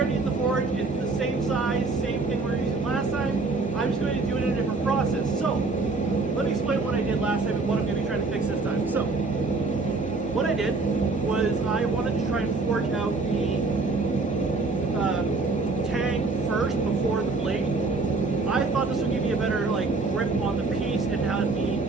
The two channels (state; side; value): quieter; left; 3.7 dB